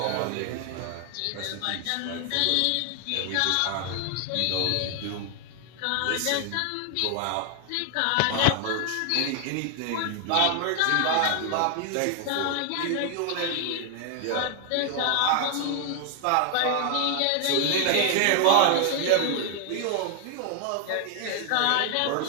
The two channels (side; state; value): both; different; correlation 0.00